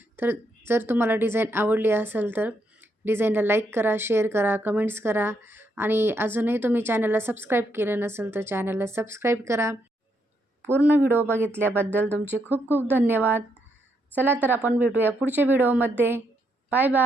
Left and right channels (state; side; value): normal; both; correlation 0.77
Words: तर जर तुम्हाला डिझाईन आवडली असेल तर डिझाईनला लाईक करा, शेअर करा, कमेंट्स करा आणि अजूनही तुम्ही चॅनलला सबस्क्राईब केलं नसेल तर चॅनलला सबस्क्राईब करा. पूर्ण व्हिडिओ बघितल्याबद्दल तुमचे खूप खूप धन्यवाद. चला तर आपण भेटूया पुढच्या व्हिडिओमध्ये. Bye